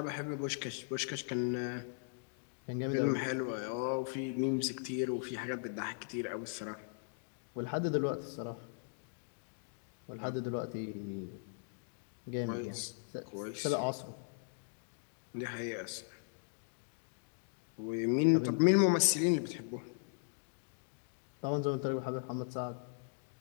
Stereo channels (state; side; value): silent; right; digital silence